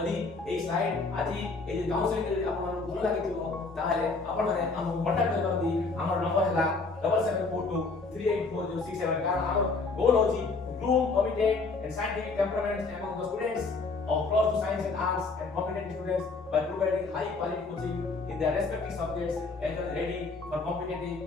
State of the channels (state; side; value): quieter; right; 3.9 dB